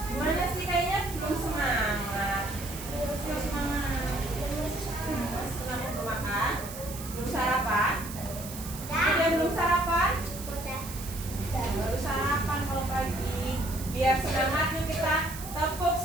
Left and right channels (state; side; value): noise; right; hiss, 12 dB below the sound